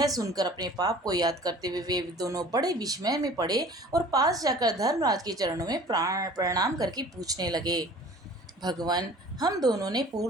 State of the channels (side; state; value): both; normal; correlation 0.47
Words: सुनकर अपने पाप को याद करते हुए वे दोनों बड़े विस्मय में पड़े और पास जाकर धर्मराज के चरणों में प्रणाम करके पूछने लगे, भगवान, हम दोनों ने